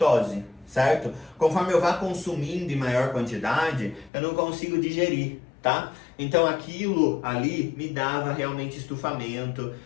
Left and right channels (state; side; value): drops out; right; at 4.1 s